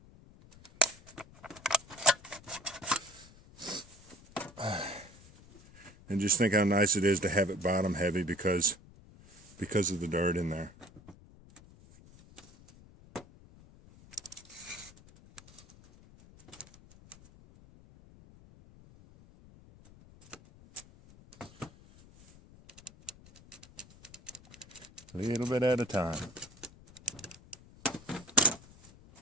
And just think how nice it is to have it bottom heavy because of the dirt in there. A little bit at a time.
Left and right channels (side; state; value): left; noise; rumble, 22 dB below the sound